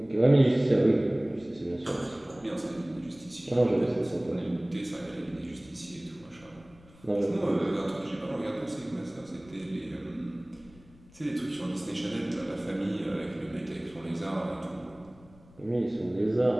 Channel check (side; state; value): left; noise; rumble, 25 dB below the sound